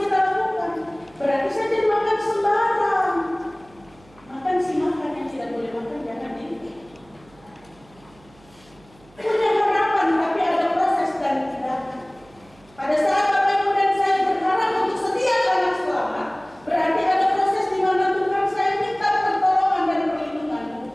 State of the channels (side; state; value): right; noise; hum, 28 dB below the sound